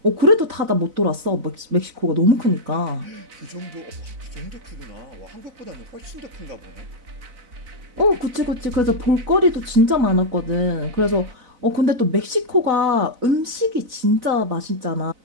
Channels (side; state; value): left; late; 4.0 ms